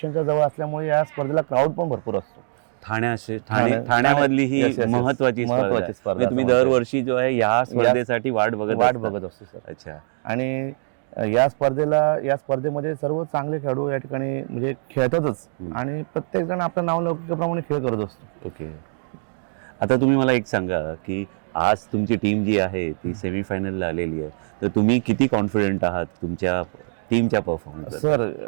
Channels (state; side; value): silent; left; digital silence